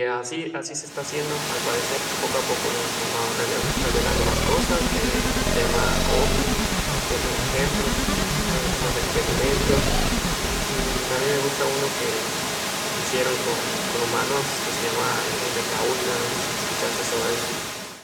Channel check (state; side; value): identical; both; correlation 1.00